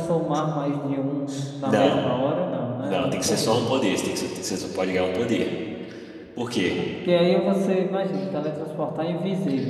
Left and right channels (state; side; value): identical; both; correlation 1.00